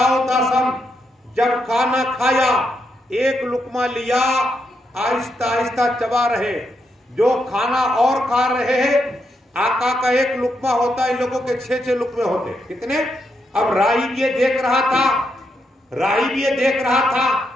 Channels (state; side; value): normal; both; correlation 0.81